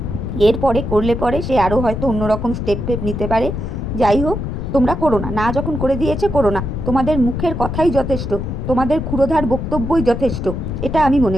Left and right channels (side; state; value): left; noise; rumble, 4 dB below the sound